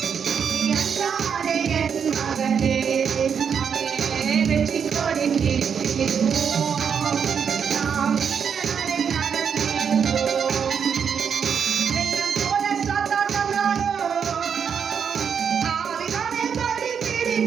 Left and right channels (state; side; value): quieter; left; 7.1 dB